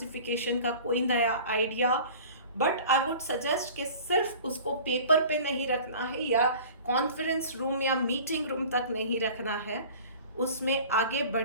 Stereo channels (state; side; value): inverted; both; correlation -0.43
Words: का कोई नया idea, but I would suggest कि सिर्फ उसको पेपर पे नहीं रखना है, या कॉन्फ्रेंस रूम या मीटिंग रूम तक नहीं रखना है। उसमें आगे